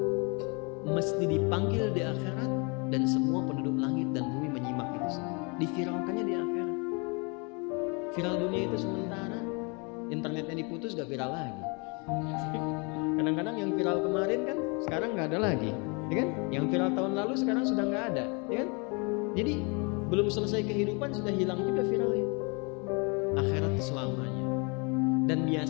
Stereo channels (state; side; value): quieter; right; 32.3 dB